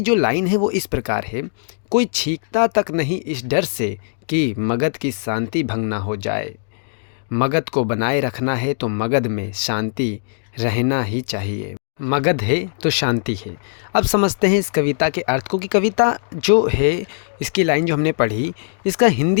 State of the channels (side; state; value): right; silent; digital silence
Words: जो लाइन है वो इस प्रकार है। कोई छींकता तक नहीं इस डर से कि मगध की शांति भंग ना हो जाए। मगध को बनाए रखना है तो मगध में शांति रहना ही चाहिए। मगध है तो शांति है। अब समझते हैं इस कविता के अर्थ को कि कविता जो है, इसकी लाइन जो हमने पढ़ी, इसका